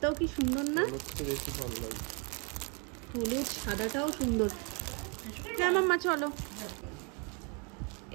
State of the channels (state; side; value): quieter; left; 34.0 dB